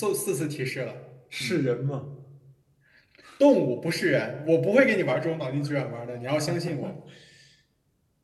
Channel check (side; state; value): both; identical; correlation 1.00